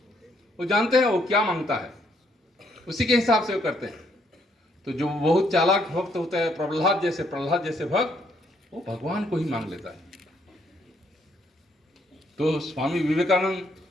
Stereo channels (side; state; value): both; normal; correlation 0.71